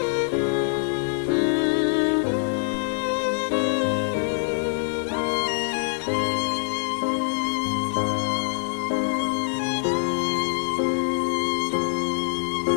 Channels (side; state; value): right; silent; digital silence